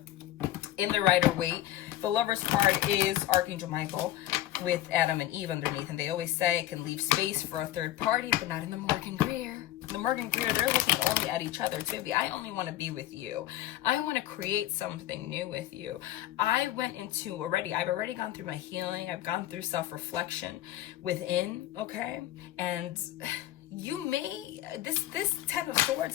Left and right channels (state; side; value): quieter; right; 13.9 dB